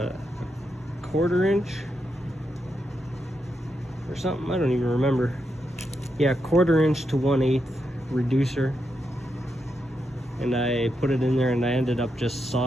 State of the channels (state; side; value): normal; both; correlation 0.84